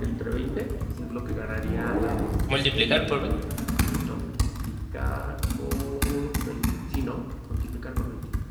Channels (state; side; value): identical; both; correlation 1.00